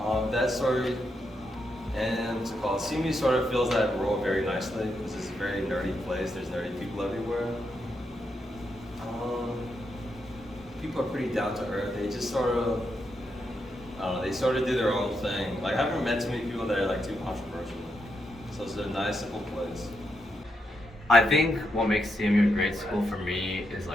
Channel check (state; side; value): normal; both; correlation 0.82